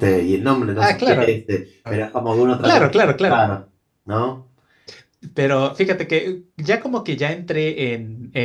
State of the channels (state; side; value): identical; both; correlation 1.00